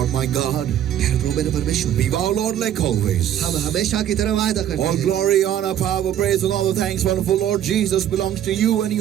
my God, प्यारे प्रभु मेरे परमेश्वर, be thou, Lord, like always. हम हमेशा की तरह वायदा करते All हैं। glory, honor, power, praise, and all the thanks, wonderful Lord Jesus, belongs to you, and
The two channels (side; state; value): left; quieter; 10.7 dB